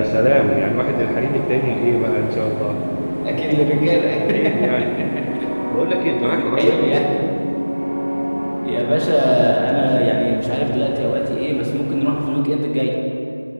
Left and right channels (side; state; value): both; inverted; correlation -1.00